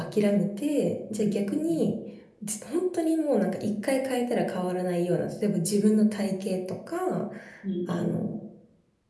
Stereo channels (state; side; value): identical; both; correlation 1.00